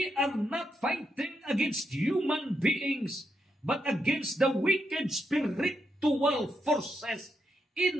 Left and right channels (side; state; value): both; normal; correlation 0.82